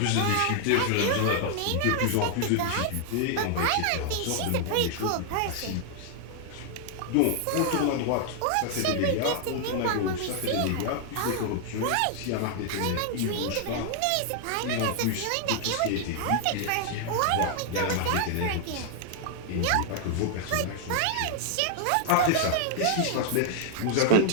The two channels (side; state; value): both; different; correlation 0.00